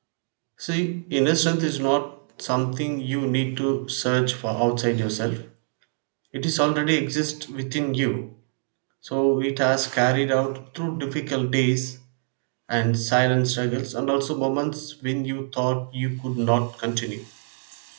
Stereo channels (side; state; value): left; silent; digital silence